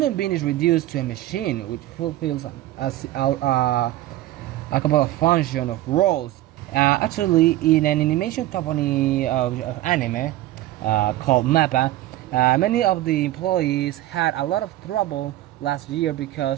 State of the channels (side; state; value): left; quieter; 15.3 dB